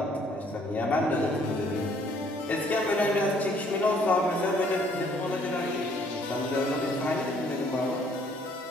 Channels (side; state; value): both; normal; correlation 0.63